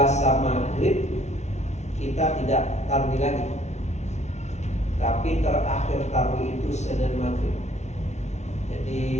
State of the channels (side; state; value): right; late; 0.32 ms